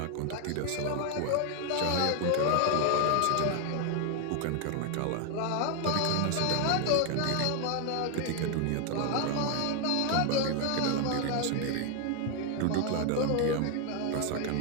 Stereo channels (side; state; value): both; different; correlation 0.01